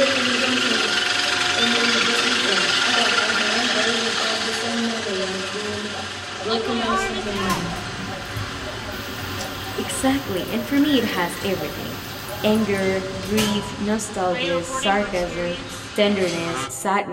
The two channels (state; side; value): identical; both; correlation 1.00